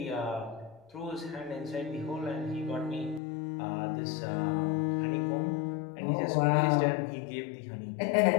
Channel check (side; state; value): right; drops out; at 3.2 s